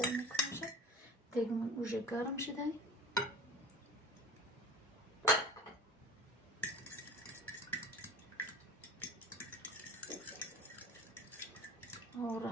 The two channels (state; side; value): normal; both; correlation 0.37